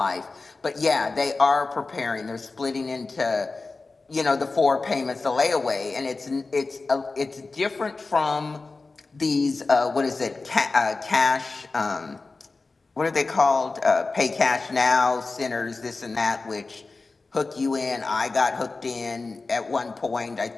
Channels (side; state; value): right; quieter; 3.7 dB